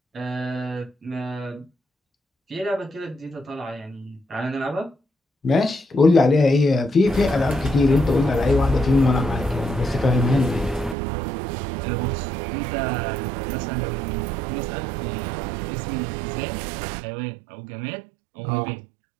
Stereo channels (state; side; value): drops out; left; at 11.0 s